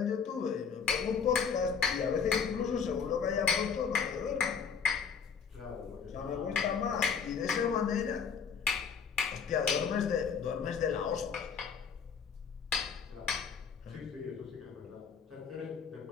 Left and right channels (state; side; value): quieter; right; 6.4 dB